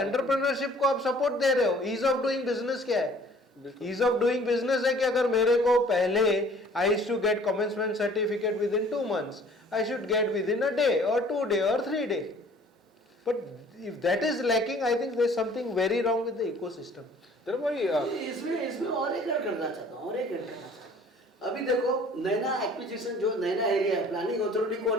को आप सपोर्ट दे रहे हो. ईज ऑफ डूइंग बिजनेस क्या है? ईज ऑफ डूइंग बिजनेस है कि अगर मेरे को पहले I used to get commencement certificate within 2 months, I should get within a day और 2 days और 3 days. But if that is lacking, I think there is something very wrong with the ecosystem. इसमें और एक add करना चाहता हूँ. अभी देखो नैना एक्विजिशन, जो नैना एरिया है, प्लानिंग अथॉरिटी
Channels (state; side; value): normal; both; correlation 0.53